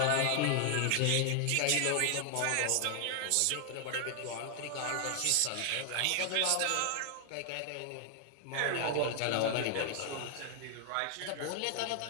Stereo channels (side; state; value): both; different; correlation 0.00